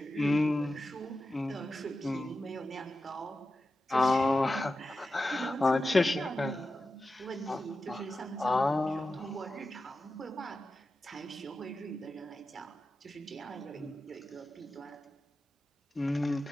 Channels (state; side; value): normal; both; correlation 0.92